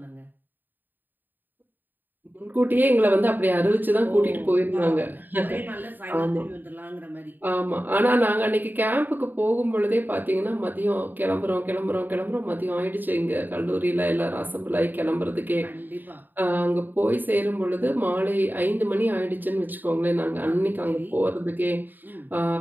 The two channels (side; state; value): left; late; 0.089 ms